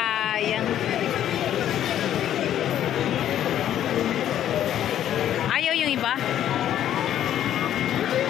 Ayaw yung iba?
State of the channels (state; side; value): quieter; right; 11.1 dB